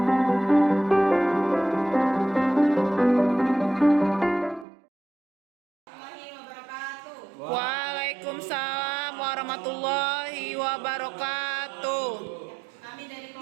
warahmatullahi wabarakatuh. Kami dari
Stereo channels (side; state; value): left; drops out; at 4.7 s